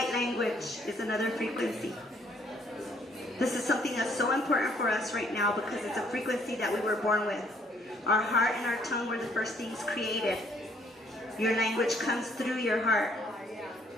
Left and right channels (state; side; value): normal; both; correlation 0.65